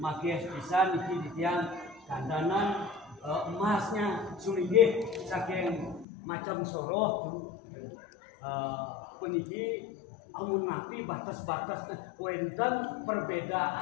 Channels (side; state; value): right; drops out; at 6.1 s